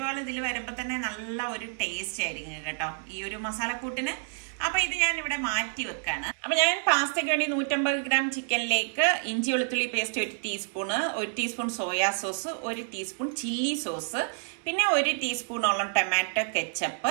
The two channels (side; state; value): left; silent; 59 dB below the other